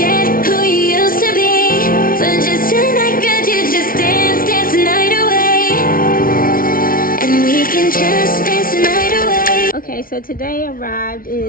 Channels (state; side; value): late; right; 0.42 ms